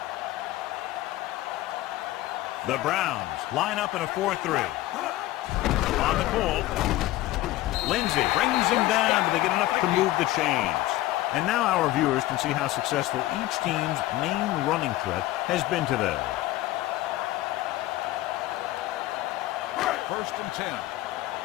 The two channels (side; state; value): right; quieter; 16.3 dB